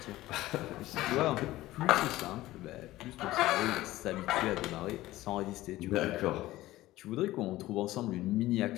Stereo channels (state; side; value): quieter; right; 16.6 dB